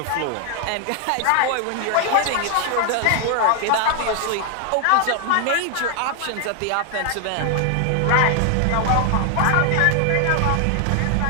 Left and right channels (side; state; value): both; different; correlation 0.00